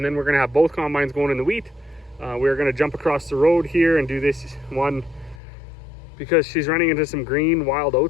then we're gonna have both combines going in the wheat. We're gonna jump across the road here and do this one because she's running into some green wild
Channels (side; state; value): right; drops out; at 5.4 s